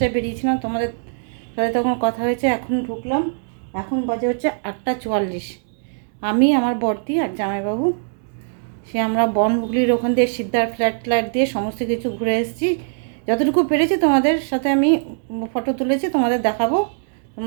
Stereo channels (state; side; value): silent; left; digital silence